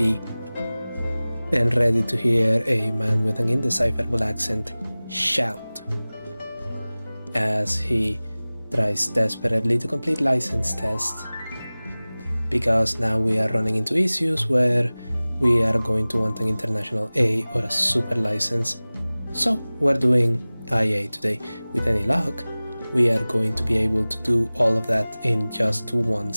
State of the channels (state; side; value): inverted; both; correlation -0.99